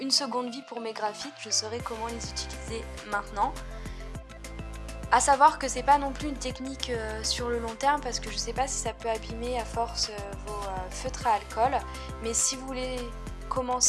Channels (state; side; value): identical; both; correlation 1.00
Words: seconde vie pour mes graphites, je saurai comment les utiliser maintenant. A savoir que c'est pas non plus une technique sur le long terme, parce que je sais pas si ça peut abîmer à force vos feutres à alcool, mais si vous voulez